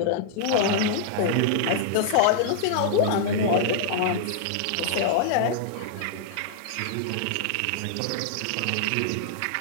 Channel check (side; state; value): both; different; correlation -0.01